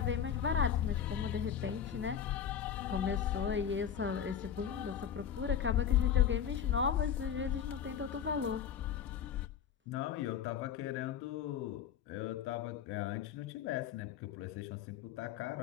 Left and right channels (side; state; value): right; quieter; 8.5 dB